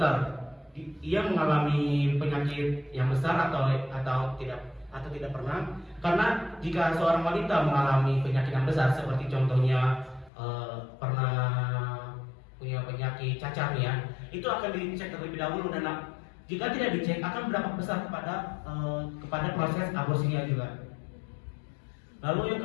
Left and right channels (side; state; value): right; drops out; at 10.3 s